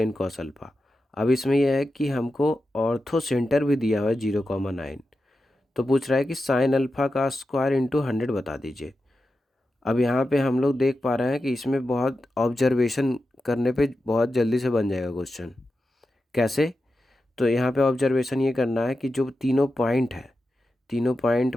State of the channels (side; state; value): both; normal; correlation 0.91